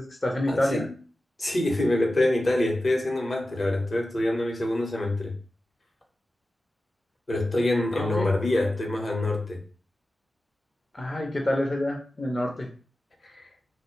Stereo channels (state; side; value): normal; both; correlation 0.94